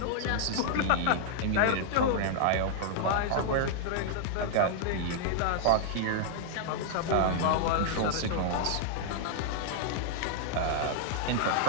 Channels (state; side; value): different; both; correlation -0.01